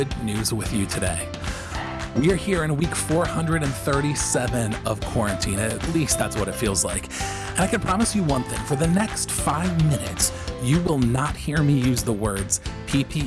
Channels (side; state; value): both; identical; correlation 1.00